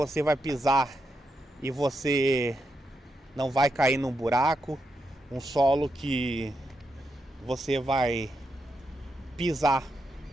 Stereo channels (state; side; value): normal; both; correlation 0.84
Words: vai pisar e você não vai cair num buraco, um solo que você vai pisar